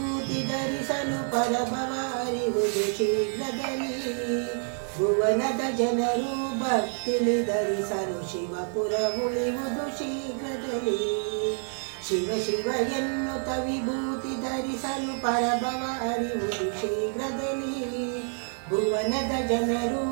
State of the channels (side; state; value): left; silent; 59 dB below the other